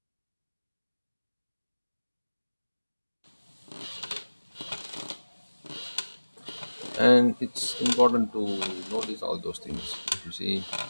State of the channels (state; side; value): inverted; both; correlation -1.00